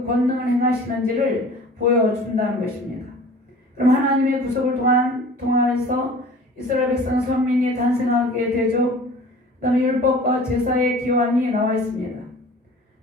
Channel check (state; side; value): normal; both; correlation 0.44